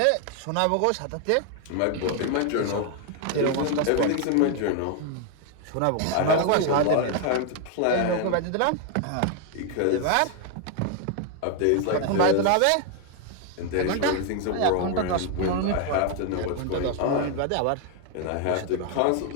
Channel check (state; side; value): different; both; correlation 0.00